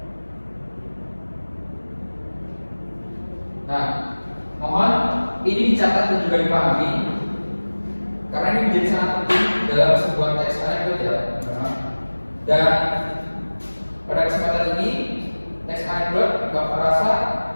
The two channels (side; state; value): both; inverted; correlation -1.00